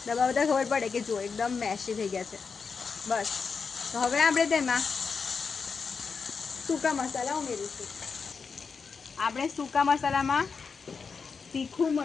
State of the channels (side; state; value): right; quieter; 5.3 dB